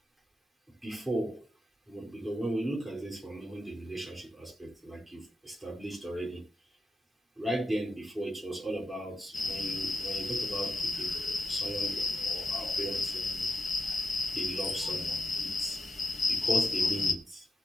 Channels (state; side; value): normal; both; correlation 0.85